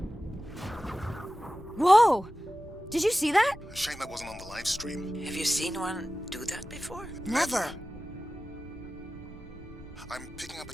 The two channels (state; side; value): normal; both; correlation 0.95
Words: Whoa! Did you see that? Shame that wasn't on the live stream. Have you seen one do that before? Never. I'm picking up a